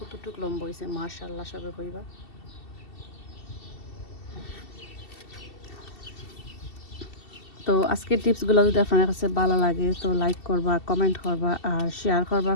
লম্বা হয়েছে, মাশাআল্লাহ সবে কইবা। তো আজকের টিপসগুলো যদি আপনার কাছে ভালো লাগে তো লাইক করবা, কমেন্ট করবা আর শেয়ার করবা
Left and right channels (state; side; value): late; right; 2.7 ms